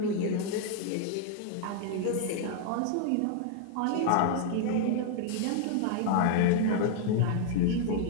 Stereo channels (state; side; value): different; both; correlation 0.00